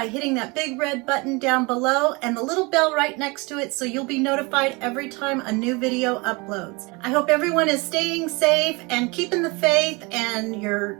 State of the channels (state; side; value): quieter; left; 26.8 dB